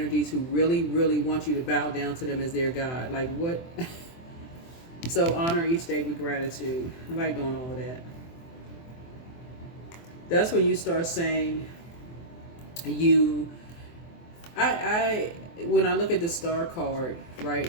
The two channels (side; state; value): right; late; 24 ms